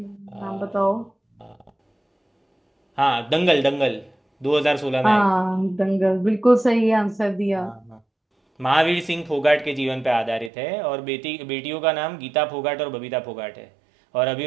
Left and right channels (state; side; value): drops out; left; at 10.5 s